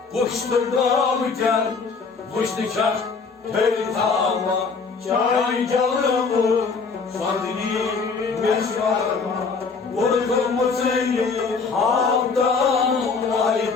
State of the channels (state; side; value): quieter; right; 4.8 dB